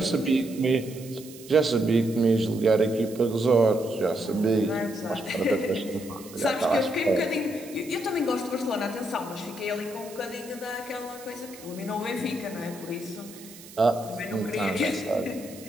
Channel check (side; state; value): right; noise; hiss, 18 dB below the sound